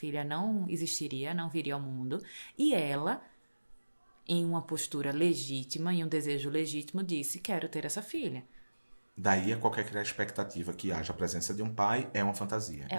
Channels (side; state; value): both; inverted; correlation -1.00